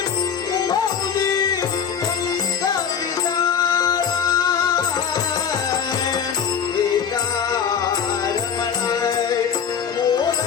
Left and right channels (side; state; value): right; quieter; 7.4 dB